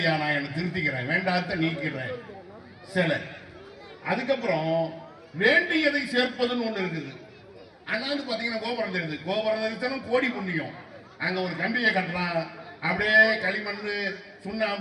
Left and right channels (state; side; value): identical; both; correlation 1.00